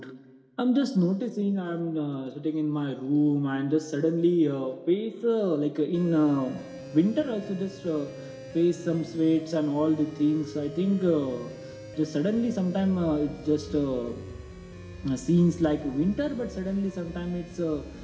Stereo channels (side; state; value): both; identical; correlation 1.00